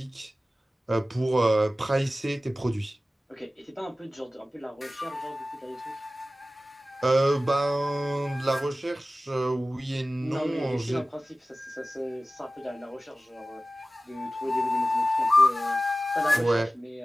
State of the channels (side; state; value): both; normal; correlation 0.96